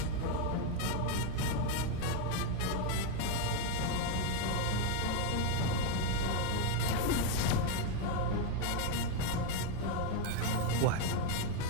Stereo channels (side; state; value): both; different; correlation 0.01